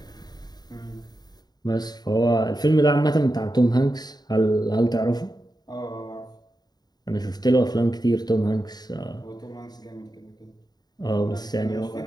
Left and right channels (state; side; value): late; right; 0.20 ms